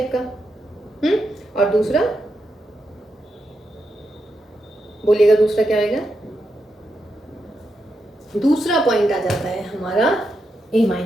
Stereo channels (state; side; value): normal; both; correlation 0.85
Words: का, और दूसरा बोलिएगा दूसरा क्या आएगा, दूसरा पॉइंट आ जाता है हमारा a